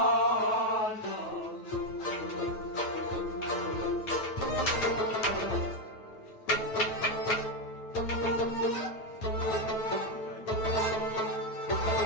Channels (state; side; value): late; right; 9.2 ms